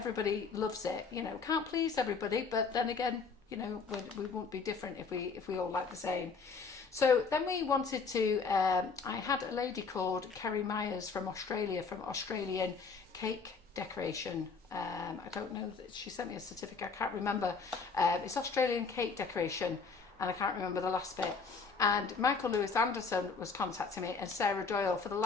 loves it. You know, can't please everybody, but then again, you know, we won't be different if we all like the same. So then we wanted to, I had a lady called Kerry Myers from Australia, from Australian Cake Decoration. I don't know, she sent me a certificate, I can't remember. It's Australian Cake Decoration, and I can't remember the last bit. And Michael Lewis Anderson was contacting me, and Sarah Doyle, over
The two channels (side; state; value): right; quieter; 4.9 dB